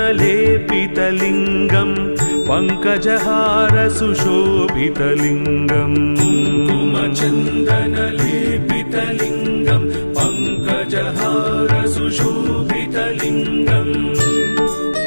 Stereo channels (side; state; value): both; inverted; correlation -1.00